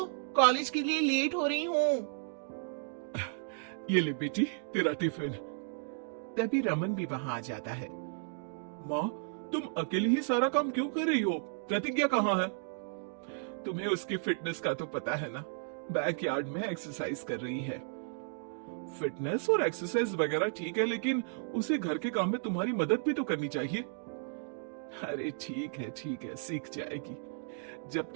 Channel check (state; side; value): silent; left; digital silence